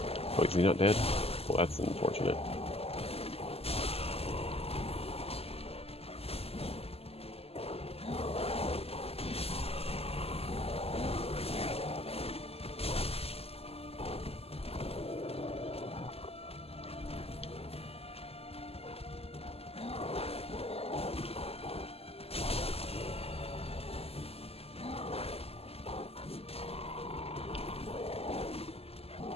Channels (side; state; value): right; late; 0.29 ms